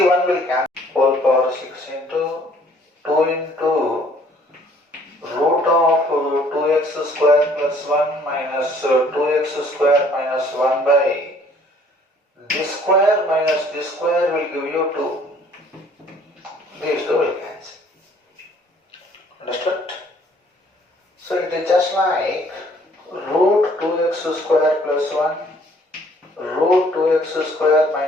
will cancel whole power 6 into 2 into root of 2x square plus 1 minus 2x square minus 1 by this square minus this square will give you 2. These two will cancel. Understood? So it is just like root 2x square plus 1 root 2x square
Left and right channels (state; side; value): normal; both; correlation 0.59